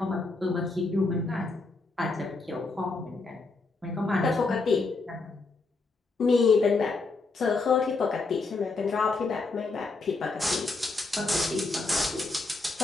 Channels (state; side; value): quieter; right; 3.6 dB